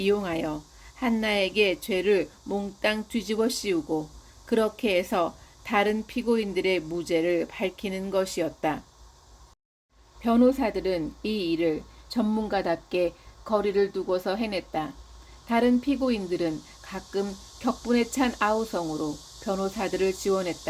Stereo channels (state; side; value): identical; both; correlation 1.00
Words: 한나에게 죄를 몽땅 뒤집어 씌우고 그렇게 해서 다른 피고인들의 무죄를 밝히는 것이었다. 변호사들은 이 일을 전문가답게 거리를 두고서 해냈다. 다른 피고인들은 가끔 격분에 찬 아우성으로 변호사들을